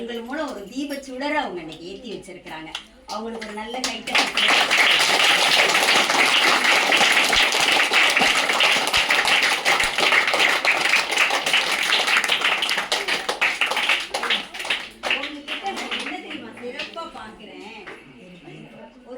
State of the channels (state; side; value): identical; both; correlation 1.00